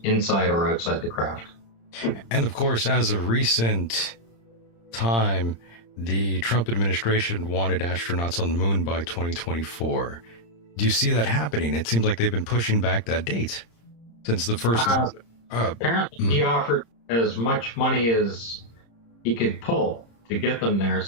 inside or outside the craft. And of course, as of recent time, the Trump administration wanted astronauts on the moon by 2024. Do you see that happening? It seems like they've been pushing back that date since the first. Apparently, he offered as much money as he could pull to get them there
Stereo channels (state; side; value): late; right; 26 ms